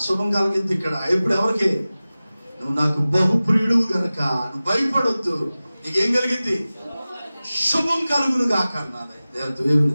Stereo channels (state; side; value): inverted; both; correlation -0.97